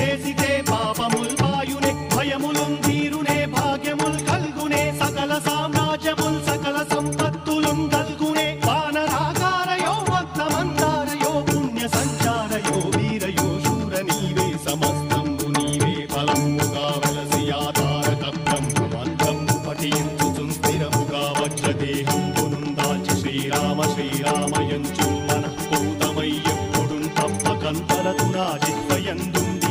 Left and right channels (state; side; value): identical; both; correlation 1.00